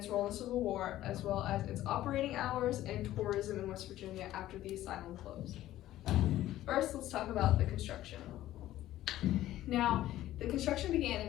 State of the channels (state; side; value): quieter; right; 14.2 dB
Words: role in the Civil War, as well as its operating hours and tourism in West Virginia after the asylum closed. First, let's talk about the construction. Now, the construction began in